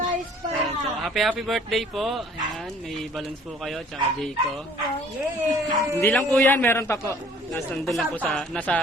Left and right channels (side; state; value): both; normal; correlation 0.55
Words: so, happy birthday po. Ayan, may balloons po kayo, tsaka day ko. Hindi lang po yan, meron pa po. Nandun lang po